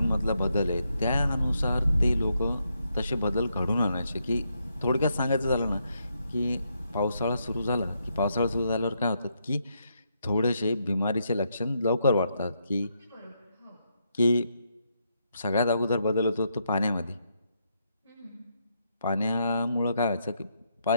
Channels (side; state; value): both; inverted; correlation -0.79